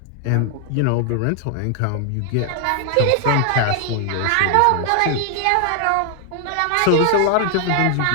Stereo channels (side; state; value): both; different; correlation 0.00